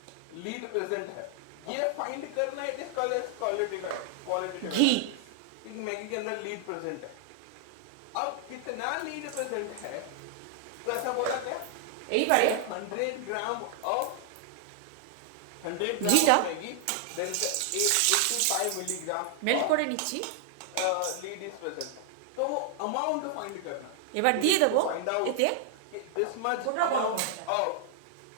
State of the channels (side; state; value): both; different; correlation 0.00